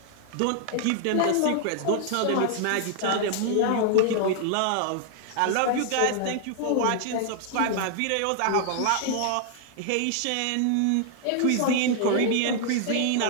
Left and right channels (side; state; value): both; different; correlation 0.00